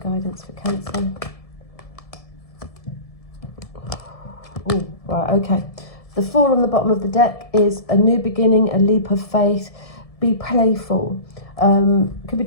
for Cancer? Oh, right, okay. The Four on the bottom of the deck is a new beginning, a leap of faith. Be playful. Could be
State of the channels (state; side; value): late; right; 1.7 ms